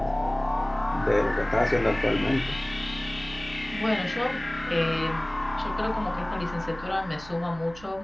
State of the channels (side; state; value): right; noise; hum, 19 dB below the sound